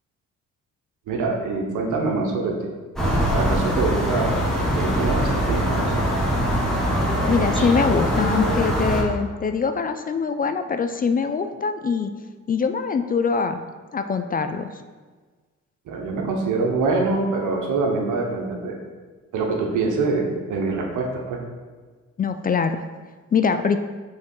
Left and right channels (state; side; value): normal; both; correlation 0.39